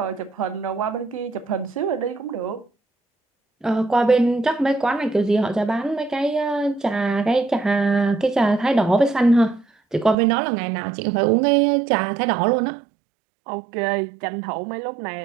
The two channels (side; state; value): left; drops out; at 10.2 s